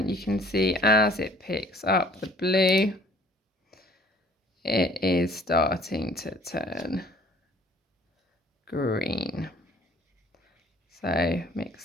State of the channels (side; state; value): both; normal; correlation 0.55